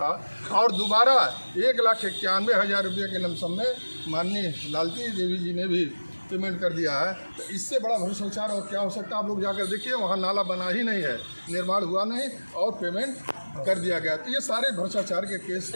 और दोबारा 1,91,000 रुपये के लमसम में माननीय लालती देवी जी ने भी पेमेंट कर दिया है। तो इससे बड़ा भ्रष्टाचार और क्या हो सकता है? आप लोग जाकर देखिए, वहाँ नाला बना ही नहीं है, निर्माण हुआ नहीं, और पेमेंट कर दिया गया। तो ये सारे भ्रष्टाचार के केस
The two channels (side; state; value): both; inverted; correlation -1.00